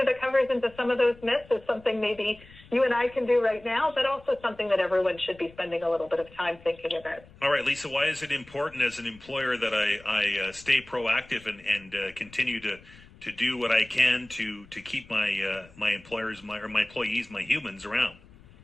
the covers into some of those myths is something maybe you and I can do right now, but also something that everyone should be spending a little bit of time thinking about. All right, Lisa, why is it important as an employer that I stay proactive and continue to do what I can to keep my employers, my employees, my humans around?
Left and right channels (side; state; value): left; noise; rumble, 24 dB below the sound